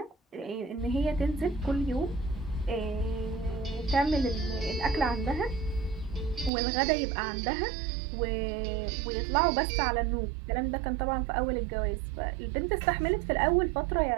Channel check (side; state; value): left; drops out; at 6.5 s